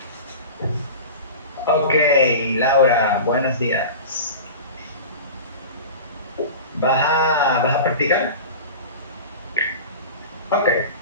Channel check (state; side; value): inverted; both; correlation -0.33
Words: Okay, Laura, buenos días. ¿Vas a practicar? Ok,